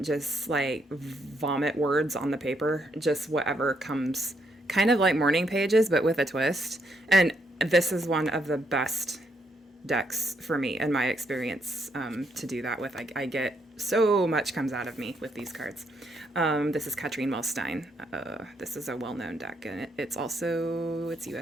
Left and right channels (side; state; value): both; normal; correlation 0.75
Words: just like vomit words on the paper, just whatever comes, kind of like morning pages but with a twist. And this is one of the best decks for me in my experience to do that with. I get so much comes out of me with these cards. This is Katrine Wellstein. This is a well-known deck, and it's